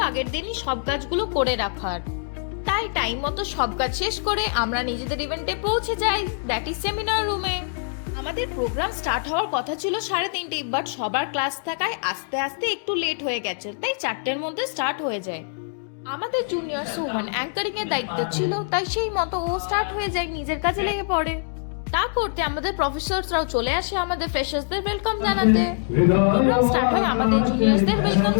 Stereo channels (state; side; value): silent; right; digital silence